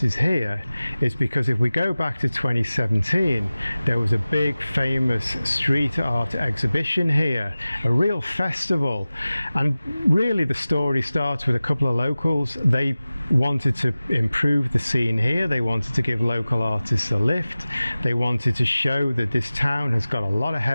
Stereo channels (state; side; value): inverted; both; correlation -0.97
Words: is here is because if we go back to 2017, there was a big famous street art exhibition here, a real festival. And really the story starts with a couple of locals. They wanted to improve the scene here. They wanted to give local artists a lift. They wanted to show that this town has got a lot of